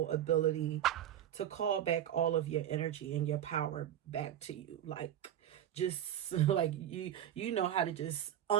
ability to call back all of your energy and your power back to you. Like, just like you know how to just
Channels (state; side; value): quieter; left; 10.9 dB